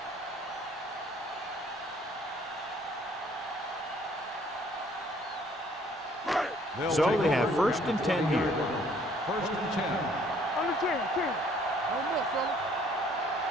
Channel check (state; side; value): normal; both; correlation 0.60